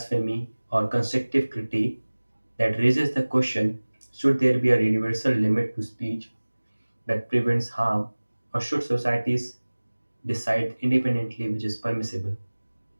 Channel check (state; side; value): inverted; both; correlation -1.00